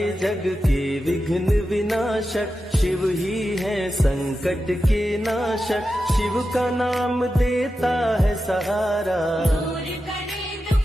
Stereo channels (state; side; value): normal; both; correlation 0.91